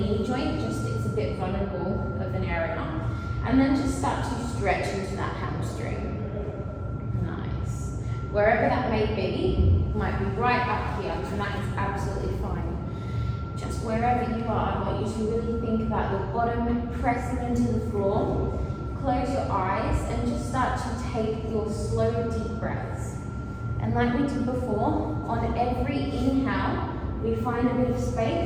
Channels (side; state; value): both; identical; correlation 1.00